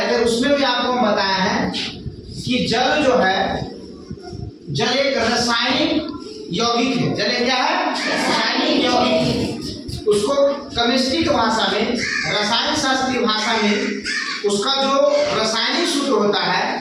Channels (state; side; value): identical; both; correlation 1.00